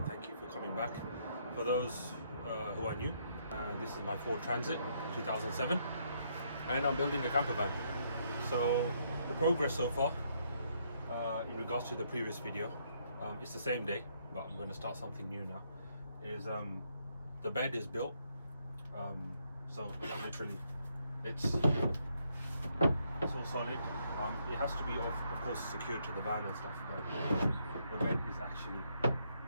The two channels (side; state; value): both; inverted; correlation -0.73